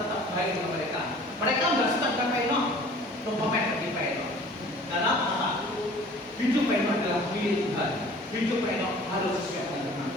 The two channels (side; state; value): both; normal; correlation 0.48